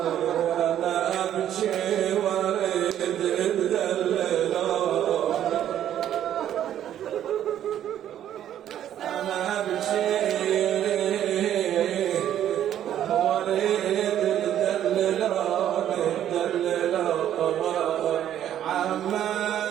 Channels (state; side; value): quieter; left; 10.9 dB